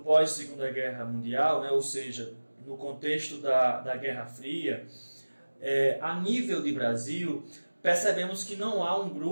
Guerra Mundial, ou seja, no contexto da Guerra Fria, a nível de Brasil, percebemos que não há um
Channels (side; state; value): both; inverted; correlation -1.00